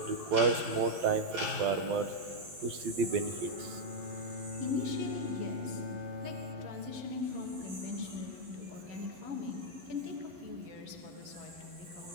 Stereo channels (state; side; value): late; left; 11 ms